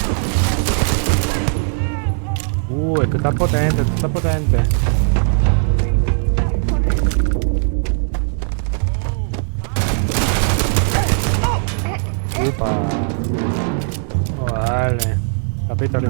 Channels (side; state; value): left; silent; digital silence